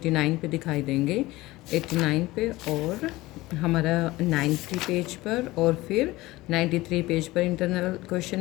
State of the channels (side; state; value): right; quieter; 19.2 dB